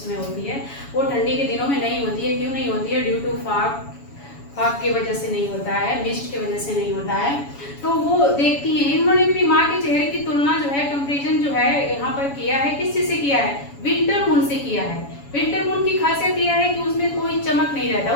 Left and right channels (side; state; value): right; late; 7.1 ms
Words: होती है, वो ठंडी के दिनों में नहीं होती है। क्यों नहीं होती है? ड्यू टू फाग की वजह से नहीं होता है, मिस्ट की वजह से नहीं होता है। तो वो देखती हैं, इन्होंने अपनी माँ के चेहरे की तुलना जो है, कंपेरिजन जो है यहाँ पर किया है, किस चीज से किया है? विंटर मून से किया है। विंटर मून की खासियत यह है कि उसमें कोई चमक नहीं रहता,